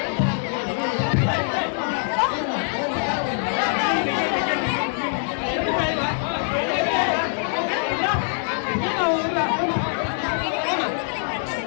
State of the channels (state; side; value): silent; right; 56 dB below the other